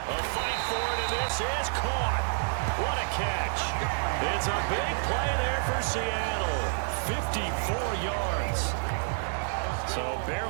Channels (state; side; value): silent; left; digital silence